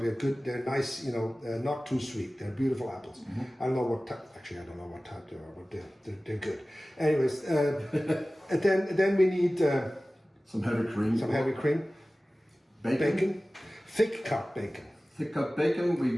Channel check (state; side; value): normal; both; correlation 0.97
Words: good. They're nice. You know, not too sweet. They're beautiful apples. I don't know what type. Actually, I don't know what type they are, but they're good. Anyways, and then we need. Some heavy cream. Some heavy cream. Bacon. Thick cut bacon. Thick cut bacon.